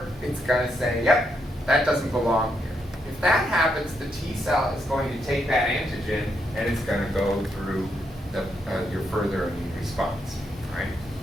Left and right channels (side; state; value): both; normal; correlation 0.79